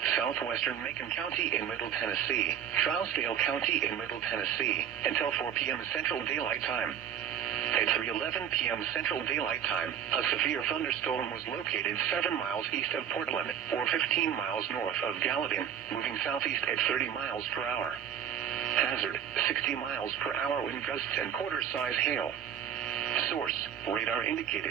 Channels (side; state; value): left; quieter; 9.0 dB